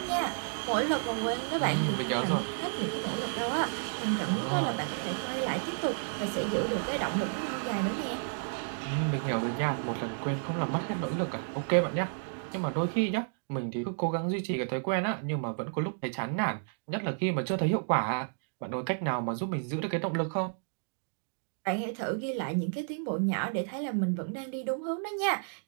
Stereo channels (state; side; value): silent; left; digital silence